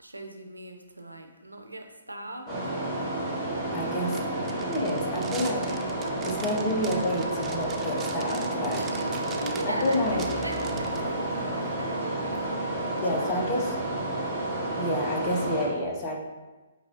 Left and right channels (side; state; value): both; inverted; correlation -0.50